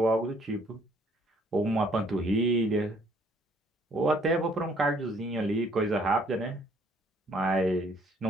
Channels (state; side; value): normal; both; correlation 0.62